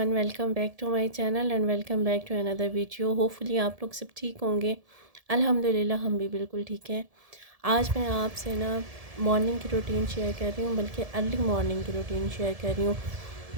welcome back to my channel and welcome back to another video. Hopefully आप लोग सब ठीक होंगे। अल्हम्दुलिल्लाह हम भी बिल्कुल ठीक हैं। आज मैं आपसे ना मॉर्निंग की रूटीन शेयर कर रही हूँ, बल्कि अर्ली मॉर्निंग की रूटीन शेयर कर रही हूँ,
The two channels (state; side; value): late; left; 1.7 ms